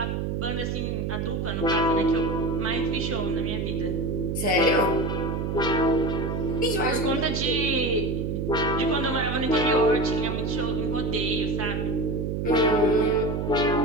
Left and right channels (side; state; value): right; noise; hum, 1 dB below the sound